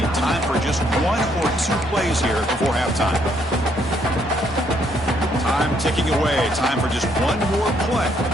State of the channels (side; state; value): both; normal; correlation 0.70